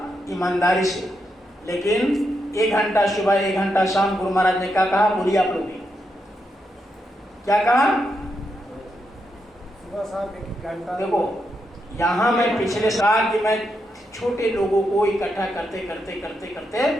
ईमानदारी से। लेकिन 1 घंटा सुबह 1 घंटा शाम, गुरु महाराज ने क्या कहा, बोलिए आप लोग क्या कहा? सुबह शाम 1 घंटा। देखो यहाँ मैं पिछले साल कि मैं छोटे लोगों को इकट्ठा करते करते करते करते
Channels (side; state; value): both; normal; correlation 0.83